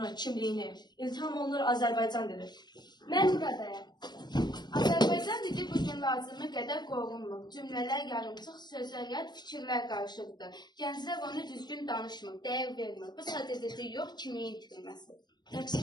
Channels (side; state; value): right; late; 0.21 ms